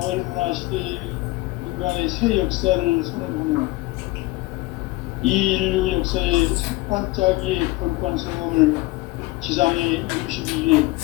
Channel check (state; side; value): quieter; right; 20.5 dB